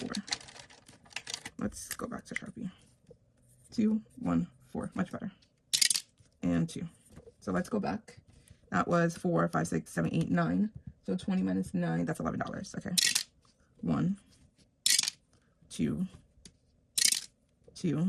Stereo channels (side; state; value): both; identical; correlation 1.00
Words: Let's go back to Sharpie. 2, 1, 4, much better. And 2. So let's go back. That was 4, 5, 6, 7, 8, 9. So 20 minus 9, that's $11. Okay. 1, 2,